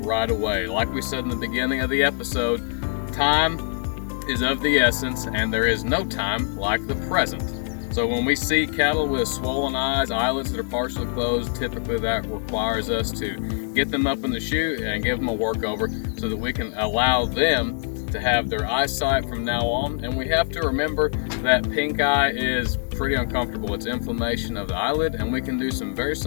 away. Like we said in the beginning of the episode, time is of the essence, and there is no time like the present. So when we see cattle with swollen eyes, eyelids that are partially closed, typically that requires us to get them up in the chute and give them a workover so that we can allow them to have their eyesight from now on. And we have to remember that pink eye is pretty uncomfortable. It's inflammation of the eyelid, and we can do some very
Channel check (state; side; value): silent; right; digital silence